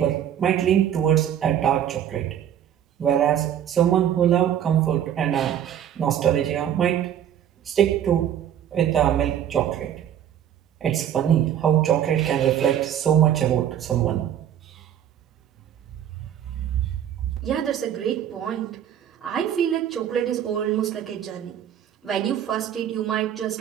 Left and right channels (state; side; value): quieter; left; 10.1 dB